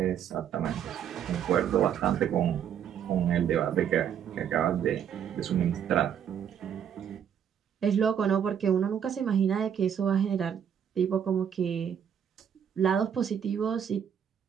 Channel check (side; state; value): left; quieter; 8.6 dB